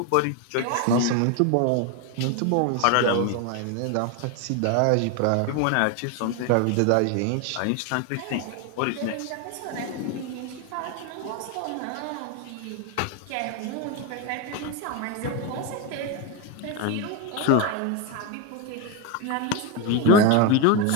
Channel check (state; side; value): different; both; correlation 0.02